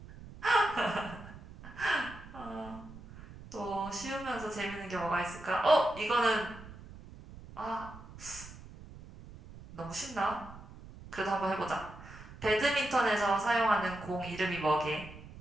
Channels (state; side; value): noise; right; rumble, 16 dB below the sound